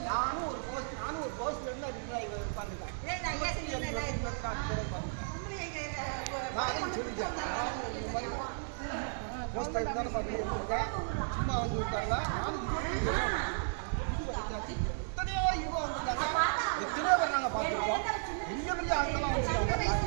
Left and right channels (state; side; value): silent; left; 55 dB below the other